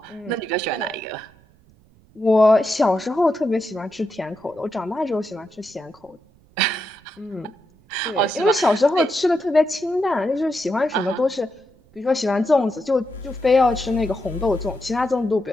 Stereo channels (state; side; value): noise; right; rumble, 30 dB below the sound